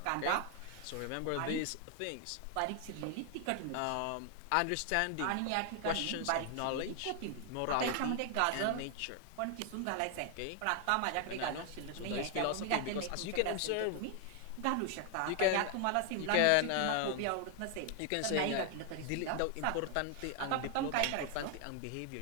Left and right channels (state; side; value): different; both; correlation 0.00